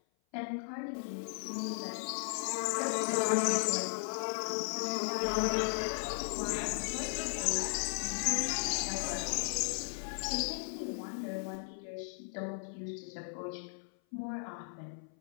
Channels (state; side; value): silent; right; 54 dB below the other